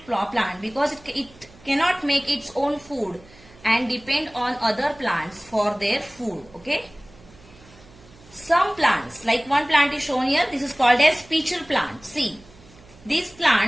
plant because it cannot make its own food and depend on other plants for their food. Okay. Some plants, like one plant is shown here, this is called as pitcher plant. See, these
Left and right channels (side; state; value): right; noise; hum, 24 dB below the sound